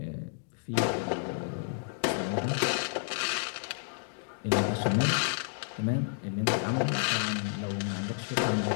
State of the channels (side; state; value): right; silent; digital silence